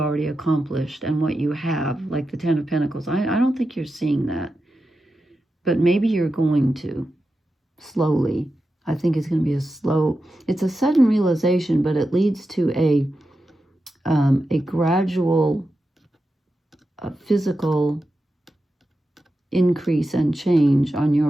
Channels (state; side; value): normal; both; correlation 0.90